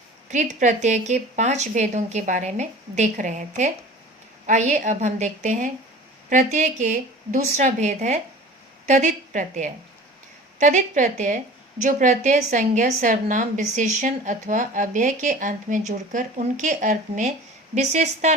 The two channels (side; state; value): both; normal; correlation 0.41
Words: कृत प्रत्यय के 5 भेदों के बारे में देख रहे थे। आइए अब हम देखते हैं प्रत्यय के दूसरा भेद है तदित प्रत्यय। तदित प्रत्यय जो प्रत्यय संज्ञा, सर्वनाम, विशेषण अथवा अव्यय के अंत में जुड़कर उनके अर्थ में विशेषता